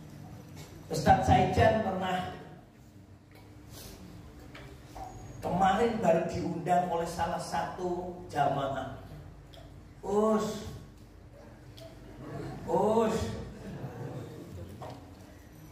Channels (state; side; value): identical; both; correlation 1.00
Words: Ustaz Saijan pernah kemarin baru diundang oleh salah satu jamaah.